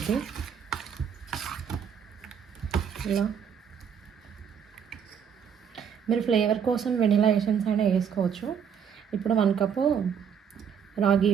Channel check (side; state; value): left; quieter; 7.6 dB